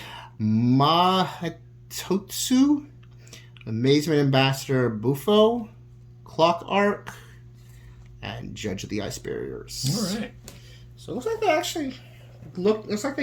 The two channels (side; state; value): both; identical; correlation 1.00